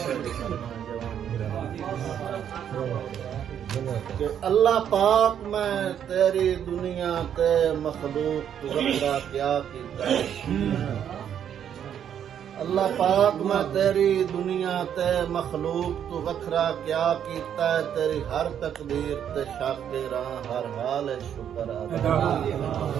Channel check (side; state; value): left; quieter; 9.2 dB